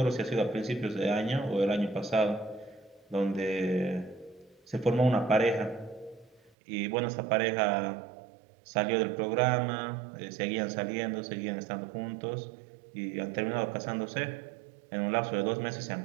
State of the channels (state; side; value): drops out; left; at 6.5 s